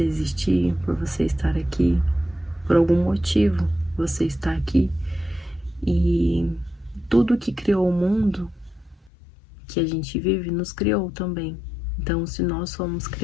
existir, por você estar aqui, por algum motivo você está aqui. E tudo que criou o mundo que a gente vive nos criou também. Então, se nós fomos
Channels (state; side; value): drops out; right; at 9.1 s